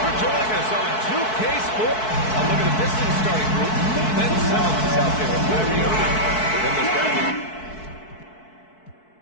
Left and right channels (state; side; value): late; right; 4.6 ms